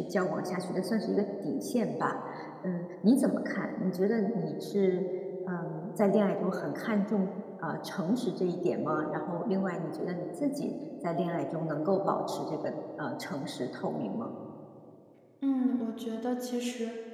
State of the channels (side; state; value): both; identical; correlation 1.00